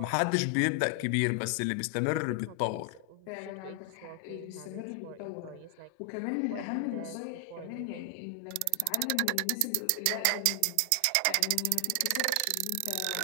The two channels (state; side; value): different; both; correlation 0.00